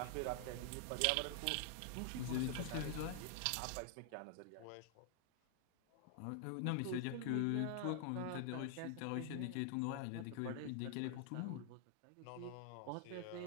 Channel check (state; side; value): different; both; correlation 0.00